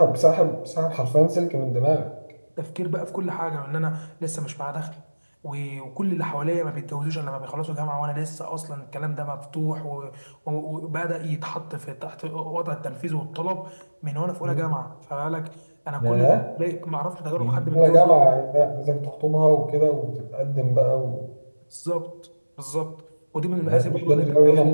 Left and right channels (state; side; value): inverted; both; correlation -1.00